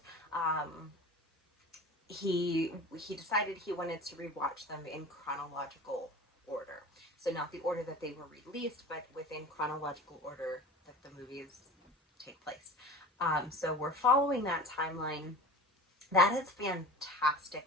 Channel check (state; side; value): normal; both; correlation 0.36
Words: He decided he wanted to rewatch them in chronological order. So not the order that they were released, but within chronological order that the movies take place. So we're following that timeline. That is